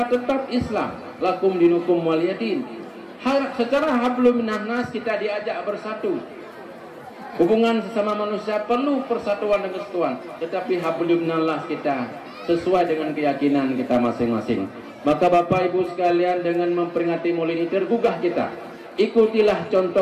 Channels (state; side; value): identical; both; correlation 1.00